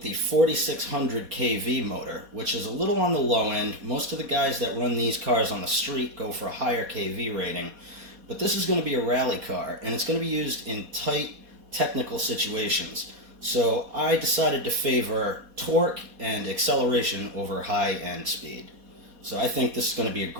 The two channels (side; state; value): left; late; 4.2 ms